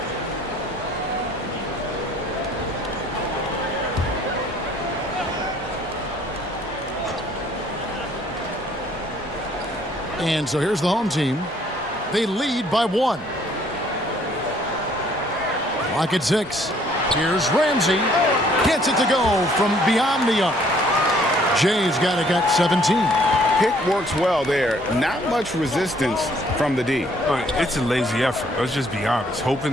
And so here's the home team. They lead by 1. Clock at 6. Here's Ramsey. Gets it to go from beyond the arc. Jay's got 17. Pick works well there. Not much resistance from the D. It's a lazy effort. Let's just be honest. Hoping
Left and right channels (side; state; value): both; normal; correlation 0.61